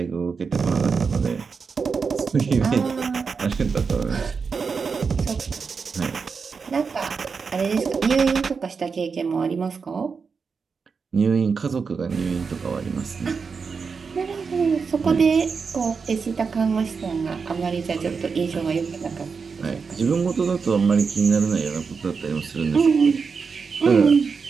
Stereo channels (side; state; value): left; quieter; 5.3 dB